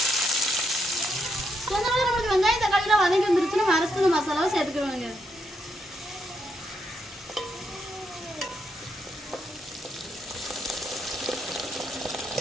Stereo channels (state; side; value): normal; both; correlation 0.78